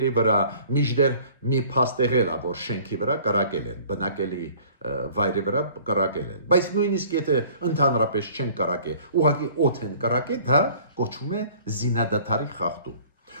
վրա, միջդեռ մի փաստ եղել է, որ շենքի վրա կրակել են, բնակելի վայրի վրա կրակել են։ Բայց նույնիսկ եթե ընդհանրապես չեն կրակել, ուղղակի օդ են կրակել, դա կոչվում է զինադատարի խախտում։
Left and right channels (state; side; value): inverted; both; correlation -0.51